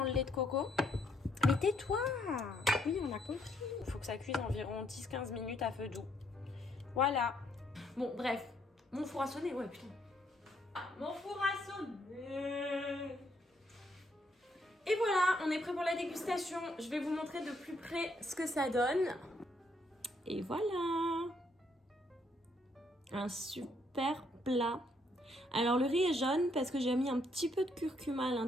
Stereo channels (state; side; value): normal; both; correlation 0.71